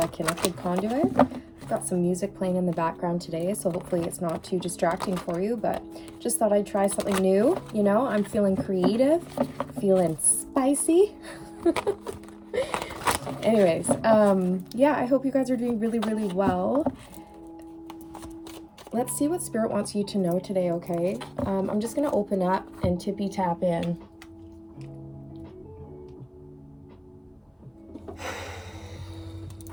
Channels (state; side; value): identical; both; correlation 1.00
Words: Connected Conduit. I've got some music playing in the background today, so hopefully it's not too distracting for you, but just thought I'd try something new. You know, I'm feeling creative, feeling spicy. Anyways, yeah, I hope you guys are doing really, really well. Let's see what Spirit wants you to know today, okay? I'm just going to open up and tippy tap in.